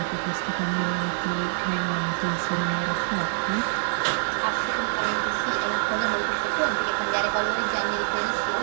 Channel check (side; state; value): left; silent; 57 dB below the other